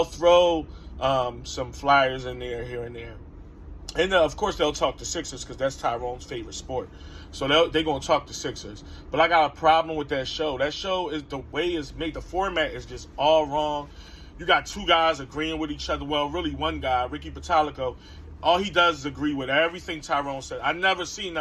throw some Flyers in there here and there. And, of course, they'll talk the Sixers because that's Tyrone's favorite sport. So they're going to talk the Sixers. But I got a problem with that show. That show is the way it's made. The format is just all wrong. You got two guys agreeing with each other. Well, really one guy, Ricky Batalico. All he does is agree with everything Tyrone said. I never seen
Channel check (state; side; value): identical; both; correlation 1.00